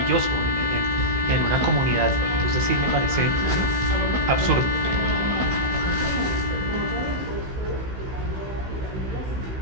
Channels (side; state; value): left; late; 15 ms